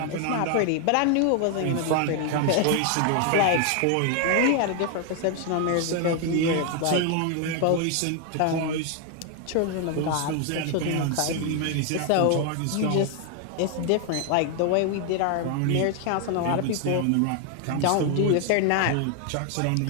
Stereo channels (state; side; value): different; both; correlation 0.01